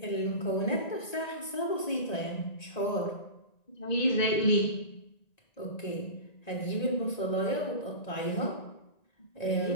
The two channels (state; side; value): late; right; 1.9 ms